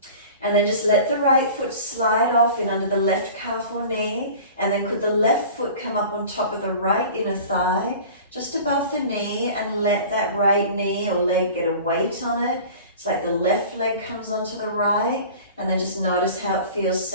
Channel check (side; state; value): both; inverted; correlation -0.40